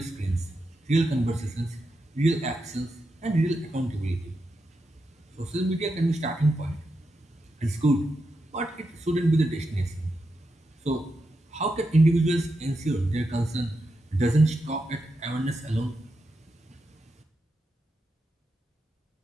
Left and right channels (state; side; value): normal; both; correlation 0.86